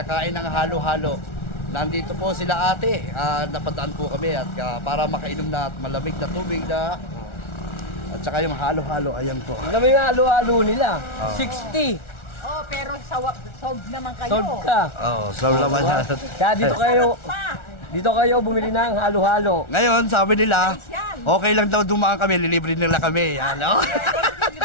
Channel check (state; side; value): late; right; 1.4 ms